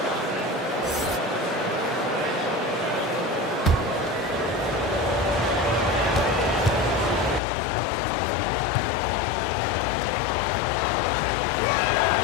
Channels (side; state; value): right; drops out; at 7.4 s